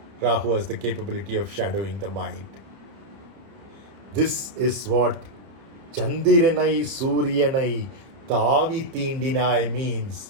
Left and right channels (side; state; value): left; late; 30 ms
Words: Rahu has the capability of shadowing the mind. This is what Chandiranai Suryanai Tavitindinai means.